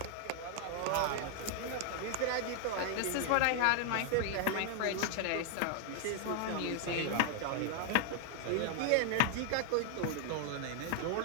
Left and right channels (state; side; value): different; both; correlation 0.00